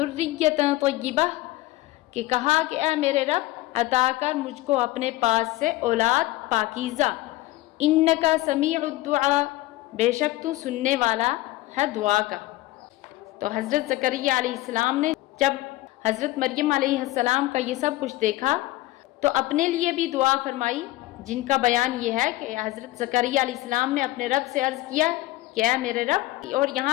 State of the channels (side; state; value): right; quieter; 17.8 dB